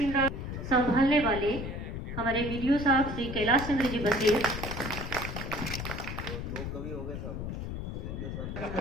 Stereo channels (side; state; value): left; noise; rumble, 5 dB below the sound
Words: संभालने वाले हमारे वीडियो साहब श्री कैलाश चंद्र जी बसेर